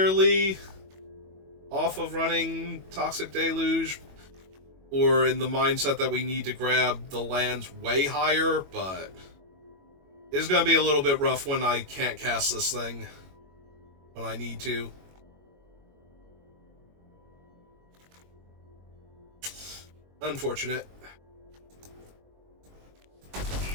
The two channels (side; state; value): left; late; 21 ms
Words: off of running Toxic Deluge, or in the mindset that we need to grab the lands way higher, but it's going to be a little bit rough when I can't cast this thing when I need to. Unfortunate.